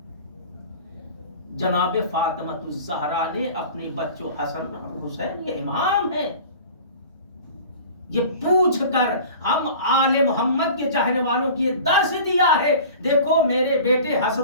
جناب فاطمہ الزہرا نے اپنے بچوں حسن اور حسین, یہ امام ہیں, یہ پوچھ کر ہم آل محمد کے چاہنے والوں کی یہ درس دیا ہے. دیکھو میرے بیٹے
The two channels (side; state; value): both; inverted; correlation -0.41